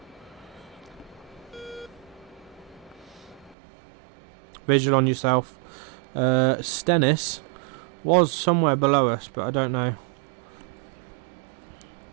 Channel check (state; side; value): drops out; left; at 3.6 s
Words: Visual on yourself. Stennis was somewhere below us, but I don't know.